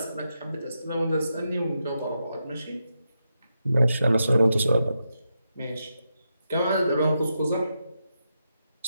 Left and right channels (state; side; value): inverted; both; correlation -0.85